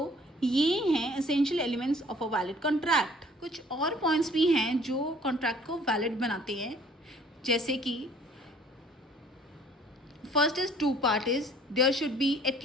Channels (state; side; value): normal; both; correlation 0.55